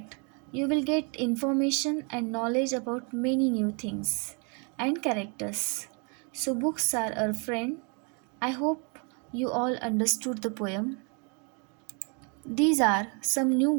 you will get information and knowledge about many new things and characters. So, books are our friend. I hope you all understood the poem. These are some new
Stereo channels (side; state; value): left; quieter; 35.7 dB